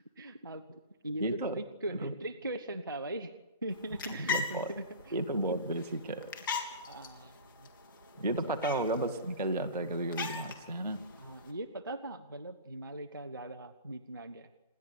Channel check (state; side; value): inverted; both; correlation -0.35